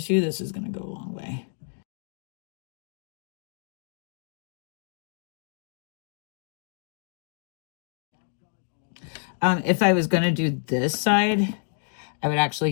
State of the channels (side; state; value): right; silent; digital silence